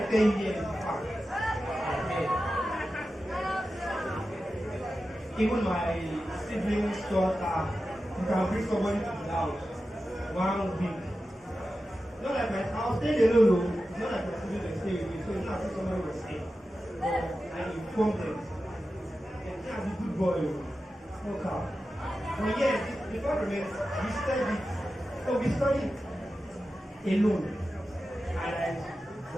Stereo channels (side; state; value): both; normal; correlation 0.92